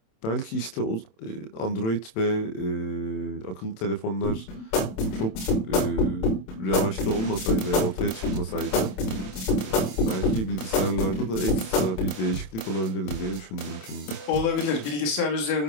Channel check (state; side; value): late; right; 27 ms